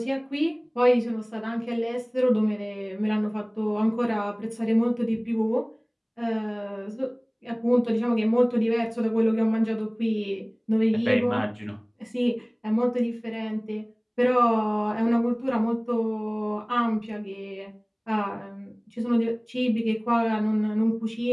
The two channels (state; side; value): identical; both; correlation 1.00